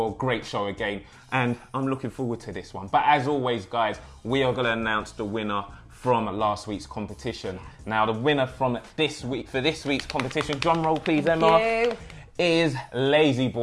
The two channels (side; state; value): both; identical; correlation 1.00